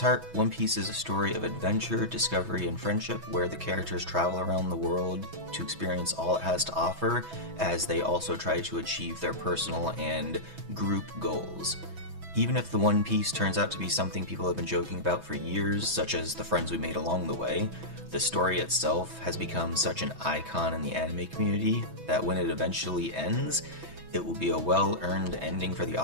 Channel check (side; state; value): left; late; 6.1 ms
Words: heart, One Piece is a story of adventure, discovery, and friendship, where the characters travel around the world to experience all it has to offer, as they also try to achieve their personal and group goals. Even if the One Piece turns out to be something people have been joking about for years, such as the friends we made along the way, the story itself has become such an icon in the anime community that when it eventually ends, it will be a well-earned ending for the